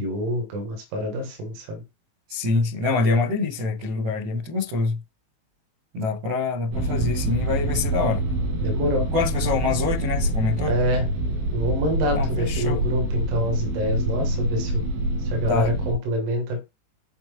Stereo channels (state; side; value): late; left; 18 ms